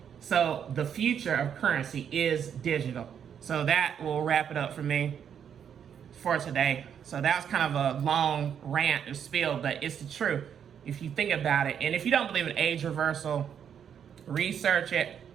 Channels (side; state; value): left; quieter; 8.3 dB